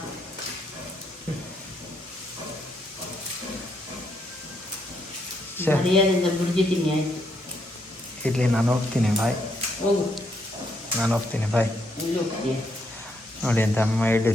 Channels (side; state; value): both; normal; correlation 0.75